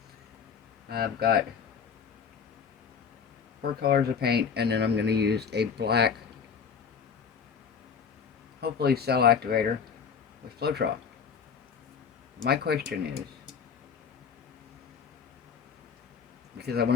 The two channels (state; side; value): quieter; right; 6.4 dB